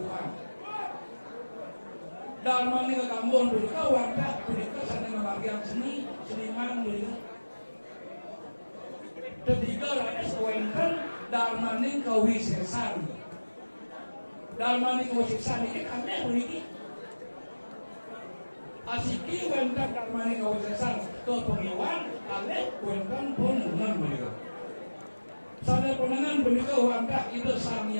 dharma ini ke gambukan punika warta punika sana membagian seniman punika Ketiga rakyat sewenten darmaning kawisesan. Darmaning kawisesan ini kami begini. Asiki wenten darmaning kawisesan ke pengiwan, kami wenten penengan beliau. Sana penengan beliau wanta itu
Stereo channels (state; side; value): inverted; both; correlation -1.00